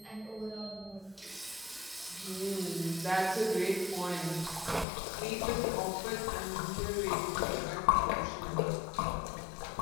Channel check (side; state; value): right; drops out; at 4.9 s